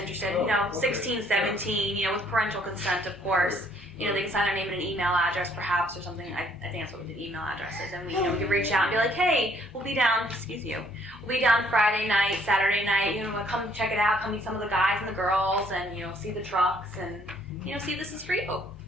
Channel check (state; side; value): normal; both; correlation 0.64